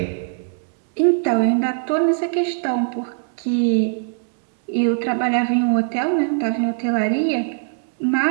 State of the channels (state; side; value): silent; left; 65 dB below the other